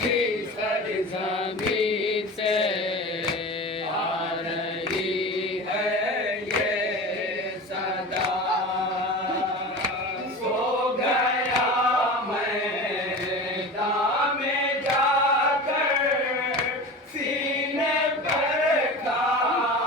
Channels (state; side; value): normal; both; correlation 0.32